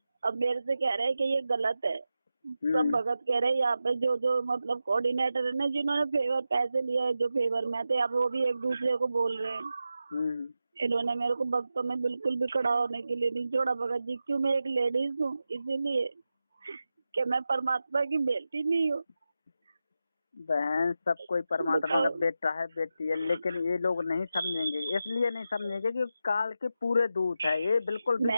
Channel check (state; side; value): inverted; both; correlation -0.91